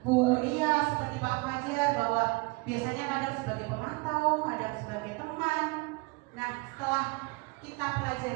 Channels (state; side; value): quieter; left; 25.9 dB